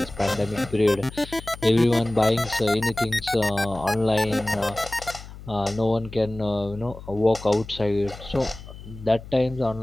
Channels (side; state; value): left; noise; hum, 15 dB below the sound